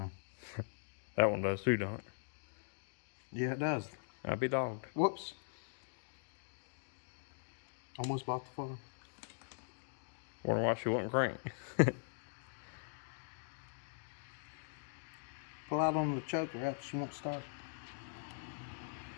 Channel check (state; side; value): silent; right; digital silence